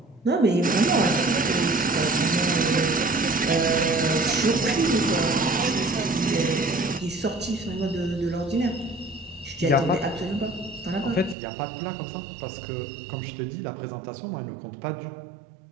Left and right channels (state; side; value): drops out; left; at 11.4 s